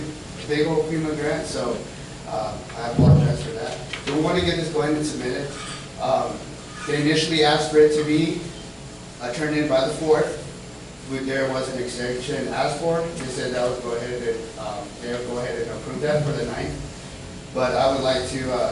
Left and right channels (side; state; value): both; identical; correlation 1.00